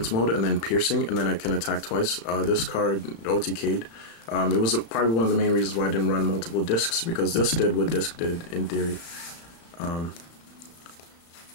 mode and then piercing, and then I can attack twice. This card OTK'd. It was probably one of the main reasons why I didn't run multiple discs, because this did what disc did in theory.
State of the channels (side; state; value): right; late; 35 ms